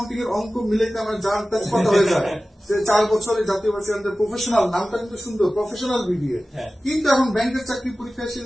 এর অঙ্ক মিলাইতে আমার জান কথা হয়ে যায়। 4 বছরে জাতীয় বাচ্চা প্রফেশনাল, নামটা কিন্তু সুন্দর, প্রফেশনাল বিবিএ, কিন্তু এখন ব্যাংকের চাকরি পরীক্ষা এসে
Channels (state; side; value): normal; both; correlation 0.96